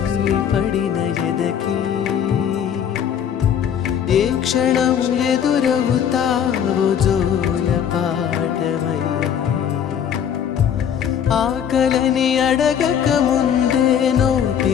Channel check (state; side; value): quieter; right; 8.6 dB